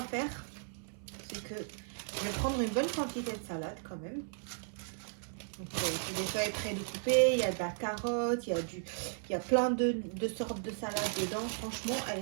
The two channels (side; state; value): left; silent; 54 dB below the other